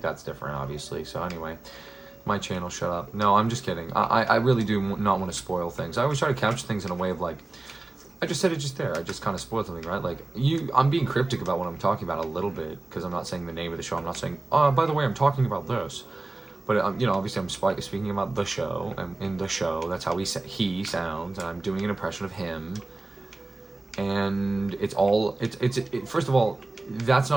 that's different, obviously. So anyway, my channel, shut up. No, I'm just kidding. I really do not want to spoil things. I always try to couch things in a way of like, I just said it just there. I just kind of spoiled something, right? Like I'm being cryptic about what I'm talking about a little bit because I'm not saying the name of the show. I'm not saying, oh, by the way, I'm talking about this. But you know, obviously, I'm speaking about the show, and in the show, that's how he sounds, and I'm doing an impression of him. And it's first of all, that's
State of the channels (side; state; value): left; quieter; 3.0 dB